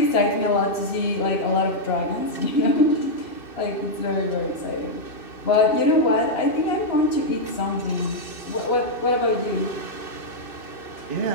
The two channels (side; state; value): right; late; 2.6 ms